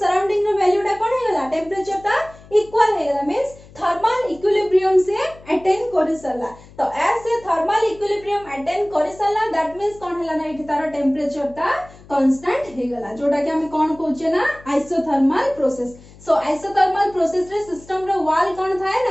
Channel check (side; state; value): left; noise; hum, 22 dB below the sound